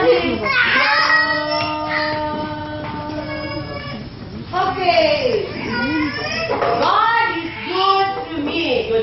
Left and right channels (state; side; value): identical; both; correlation 1.00